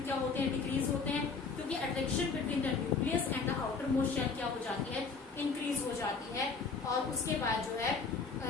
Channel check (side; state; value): right; quieter; 4.8 dB